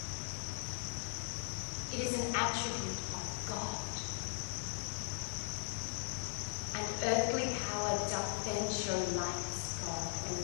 It is an attribute of God. And earthly power doth then show light as God, and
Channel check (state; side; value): silent; right; 52 dB below the other